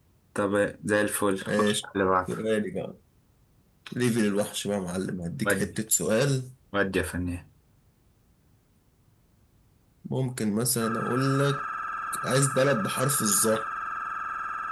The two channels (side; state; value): both; identical; correlation 1.00